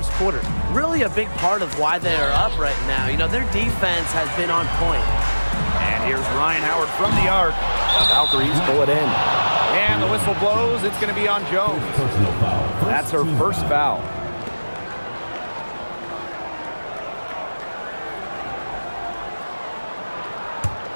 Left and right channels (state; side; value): inverted; both; correlation -1.00